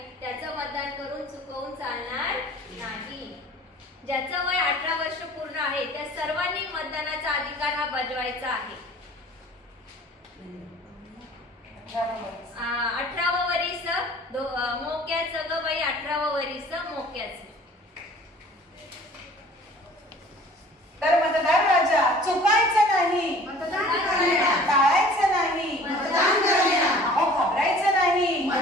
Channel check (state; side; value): normal; both; correlation 0.49